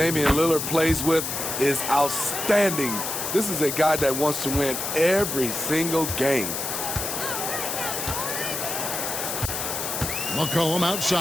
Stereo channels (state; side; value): noise; left; hiss, 3 dB below the sound